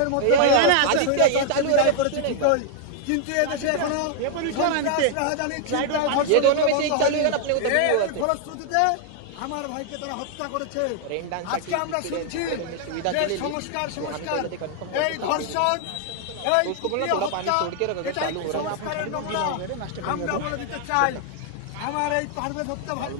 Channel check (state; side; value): different; both; correlation 0.00